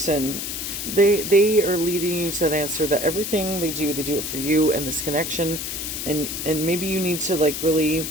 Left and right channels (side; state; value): left; noise; hiss, 5 dB below the sound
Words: they are leading you to that answer that everything they do it for you and this connection. And maybe you need to, like, really